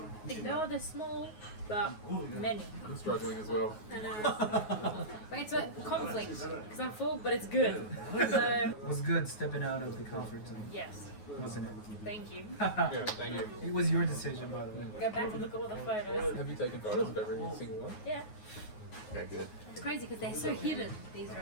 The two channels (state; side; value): late; right; 9.4 ms